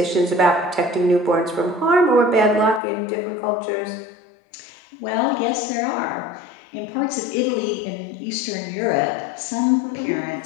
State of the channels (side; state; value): right; drops out; at 2.8 s